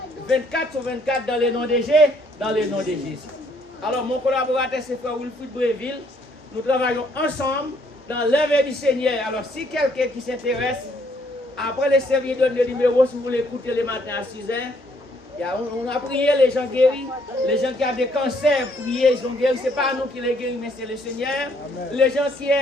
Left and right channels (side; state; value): both; normal; correlation 0.67